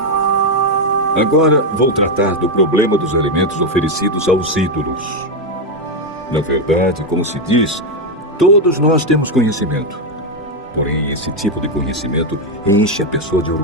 Agora vou tratar do problema dos alimentos oferecidos aos ídolos. Na verdade, como se diz, todos nós temos conhecimento. Porém, esse tipo de conhecimento enche a pessoa de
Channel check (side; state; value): both; normal; correlation 0.05